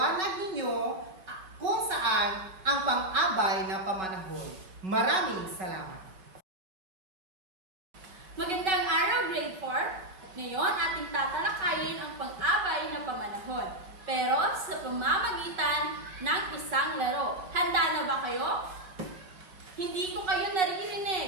ninyo kung saan ang pang-abay na pamanahon. Maraming salamat. Magandang araw, Grade 4. Ngayon, ating tatalakayin ang pang-abay na pamanahon. Pero sa pamamagitan ng isang laro. Handa na ba kayo? Hindi ko kayo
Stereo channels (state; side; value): late; left; 5.3 ms